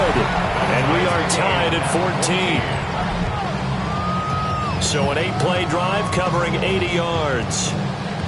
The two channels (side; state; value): both; identical; correlation 1.00